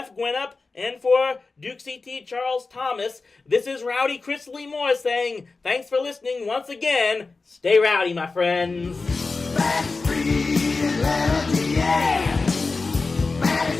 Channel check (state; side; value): quieter; right; 3.9 dB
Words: Gwinnett and for Duke CT Charles Thomas, this is Rowdy Chris Lee Moore saying, thanks for listening once again. Stay rowdy, my friends. Backstreet Atlanta, yeah.